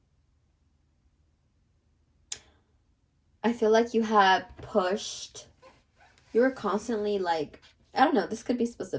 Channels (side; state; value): both; identical; correlation 1.00